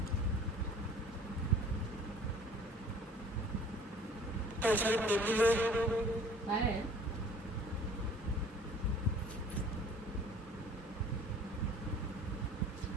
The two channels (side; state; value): both; normal; correlation 0.50